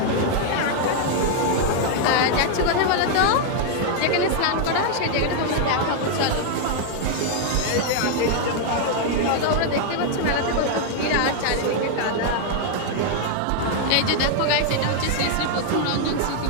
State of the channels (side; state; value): both; different; correlation 0.00